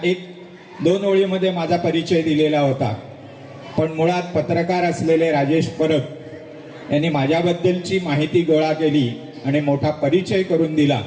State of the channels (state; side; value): identical; both; correlation 1.00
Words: 1-2 ओळीमध्ये माझा परिचय दिलेला होता, पण मुळात पत्रकार असलेले राजेश परब यांनी माझ्याबद्दलची माहिती गोळा केली आणि मोठा परिचय करून दिला।